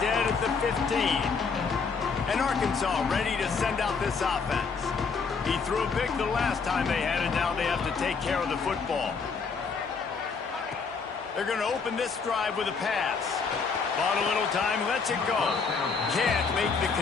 at the 15. And Arkansas ready to send out this offense. He threw a pick the last time they had it. Now they have to take care of the football. They're going to open this drive with a pass. Bought a little time, lets it go. Can't make the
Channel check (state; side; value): quieter; right; 5.2 dB